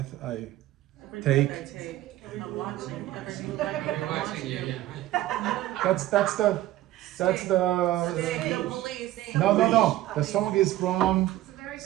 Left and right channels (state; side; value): quieter; left; 14.9 dB